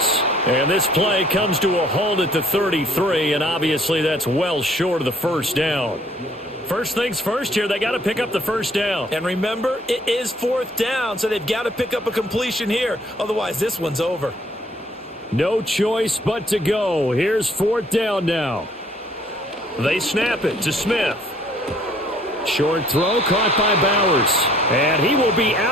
And this play comes to a halt at the 33, and obviously that's well short of the first down. First things first here, they got to pick up the first down. And remember, it is 4th down, so they've got to pick up a completion here. Otherwise, this one's over. No choice but to go. Here's 4th down now. They snap it to Smith. Short throw caught by Bowers. And he will be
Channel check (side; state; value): both; normal; correlation 0.60